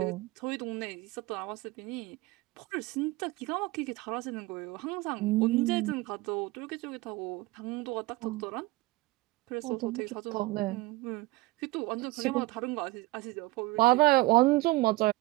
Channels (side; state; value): left; quieter; 20.4 dB